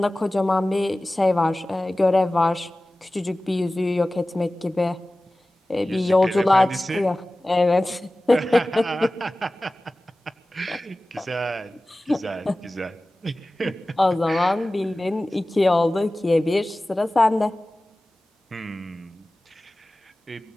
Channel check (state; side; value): normal; both; correlation 0.97